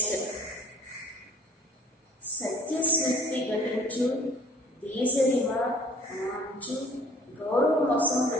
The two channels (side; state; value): both; normal; correlation 0.52